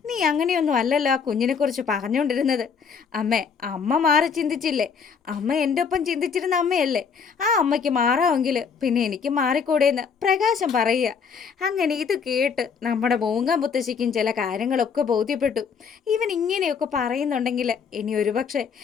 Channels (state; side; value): quieter; right; 6.2 dB